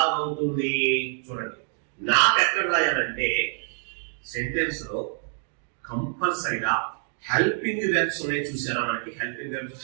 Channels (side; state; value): left; silent; 61 dB below the other